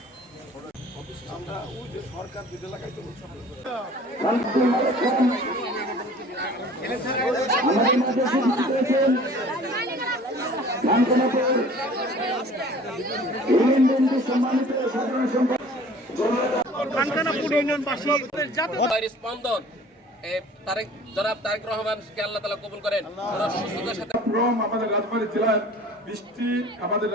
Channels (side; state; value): both; normal; correlation 0.47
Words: আমরা ওই যে সরকার যেটা লাগাইতে স্পন্দন জনাব তারেক রহমানকে আল্লাহ তাআলা কবুল করেন। সুস্থতার সাথে আমাদের রাজবাড়ী জেলার আমাদের